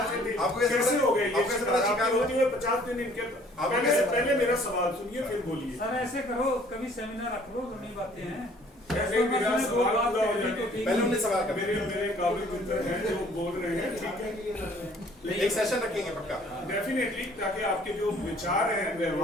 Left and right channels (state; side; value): normal; both; correlation 0.57